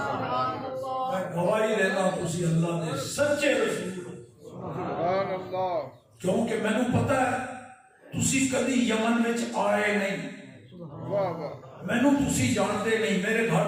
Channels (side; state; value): both; identical; correlation 1.00